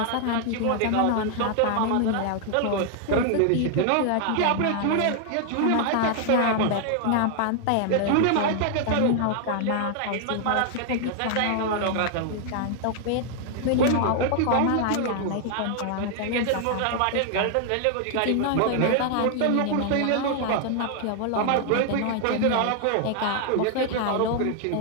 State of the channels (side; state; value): both; different; correlation 0.00